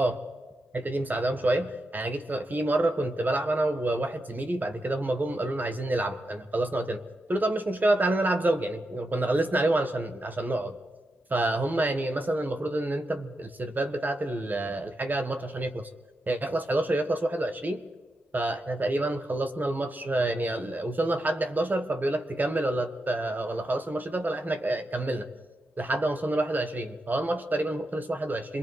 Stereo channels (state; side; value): normal; both; correlation 0.86